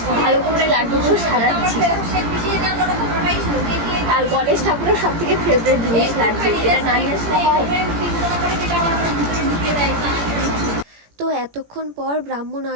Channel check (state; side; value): late; left; 17 ms